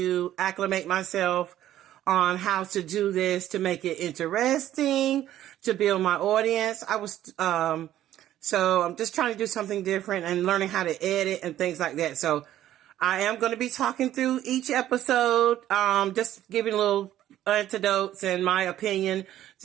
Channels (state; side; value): quieter; left; 12.6 dB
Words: acclimate myself on how to do this to make it interesting, to build my audience. So I'm just trying to do something different and learning how to edit and things like that. So I am going to be talking through each episode, just giving little anecdotes and my opinion